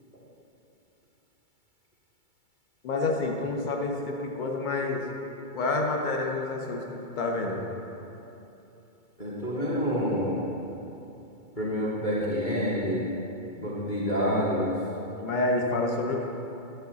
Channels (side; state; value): right; late; 2.3 ms